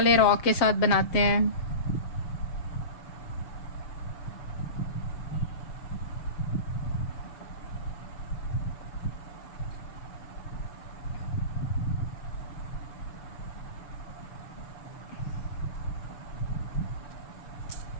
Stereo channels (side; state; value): right; late; 6.9 ms